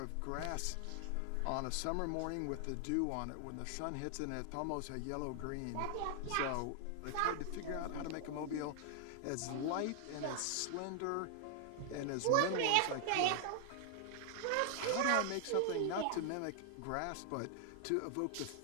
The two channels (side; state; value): both; different; correlation 0.00